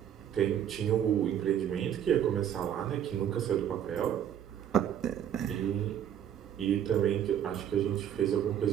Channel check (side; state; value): left; quieter; 9.8 dB